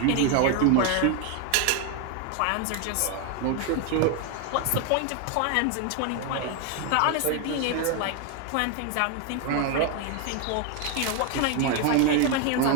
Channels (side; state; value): both; different; correlation 0.01